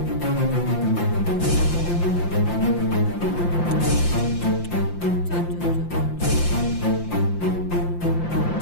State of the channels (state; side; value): late; right; 5.8 ms